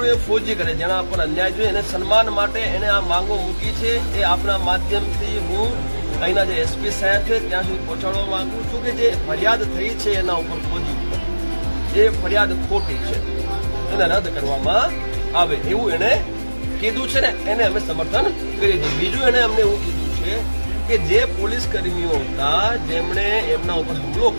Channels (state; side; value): inverted; both; correlation -1.00